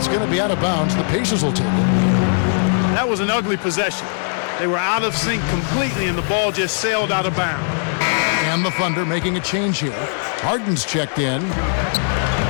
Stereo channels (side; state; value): right; silent; 61 dB below the other